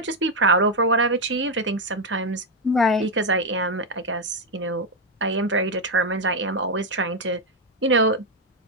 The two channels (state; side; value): normal; both; correlation 0.04